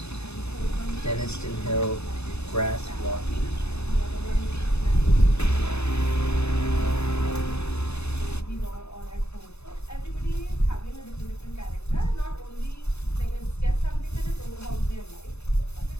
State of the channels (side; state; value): right; late; 0.80 ms